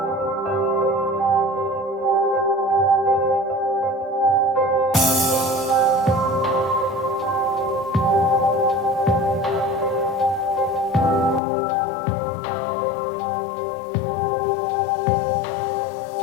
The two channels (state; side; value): drops out; right; at 11.4 s